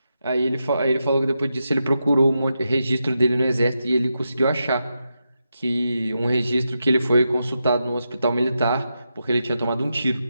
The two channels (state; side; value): inverted; both; correlation -0.87